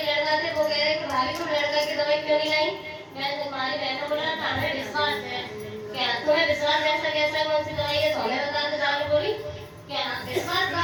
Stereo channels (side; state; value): both; identical; correlation 1.00